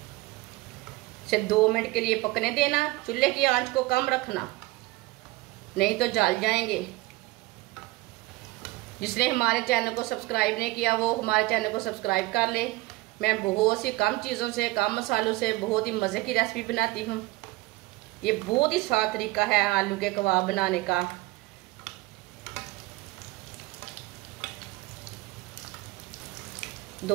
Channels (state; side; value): quieter; left; 20.4 dB